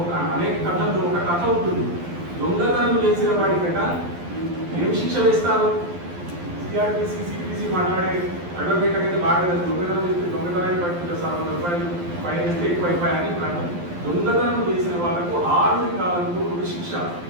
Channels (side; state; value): left; late; 12 ms